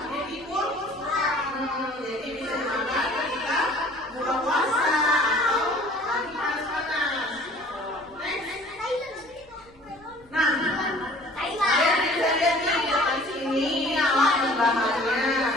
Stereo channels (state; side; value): noise; left; rumble, 28 dB below the sound